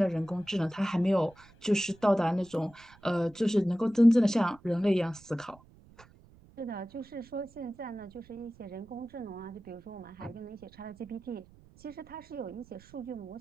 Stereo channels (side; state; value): right; noise; rumble, 25 dB below the sound